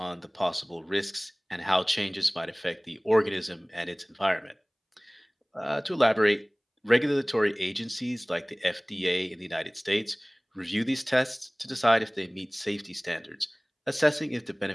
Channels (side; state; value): both; identical; correlation 1.00